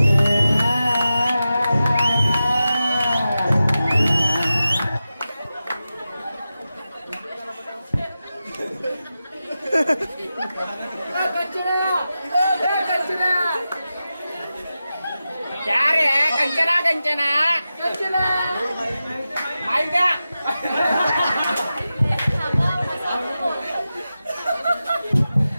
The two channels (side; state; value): both; inverted; correlation -0.93